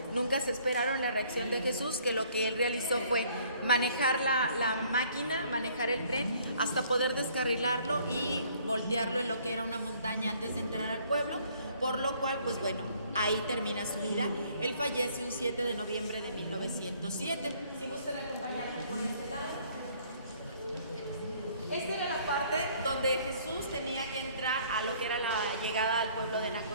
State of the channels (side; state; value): both; inverted; correlation -0.60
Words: Nunca se esperaron la reacción de Jesús, que lo que él realizó fue manejar la máquina, manejar el tren, hasta poder descarrilarlo y voltearlo en lo que era una montaña antes de entrar al pueblo. Por lo cual, pues bueno, ahí termina su vida. Él fallece un 7 de noviembre de 1907. Si gustan acompañarme por este lado. Esta era la parte donde Jesús tenía que entrar a lo que era la llegada al pueblo de